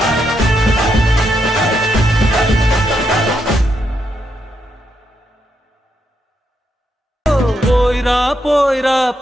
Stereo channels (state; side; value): normal; both; correlation 0.80